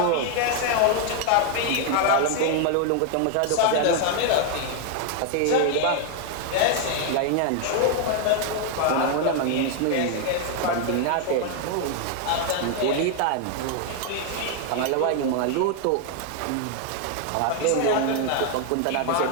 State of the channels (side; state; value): both; different; correlation 0.00